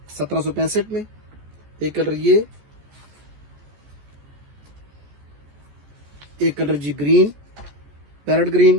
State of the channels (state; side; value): late; left; 14 ms